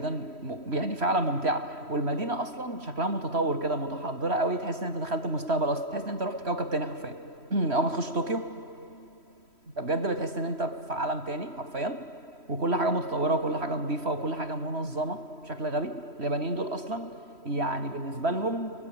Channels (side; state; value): left; late; 3.1 ms